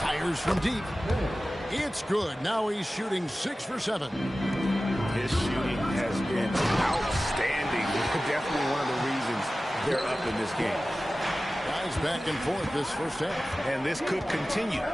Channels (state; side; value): normal; both; correlation 0.96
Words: from deep. It's good. Now he's shooting 6 for 7. His shooting has been outstanding. Definitely one of the reasons they're up in this game. Guys back and forth this first half. And this could continue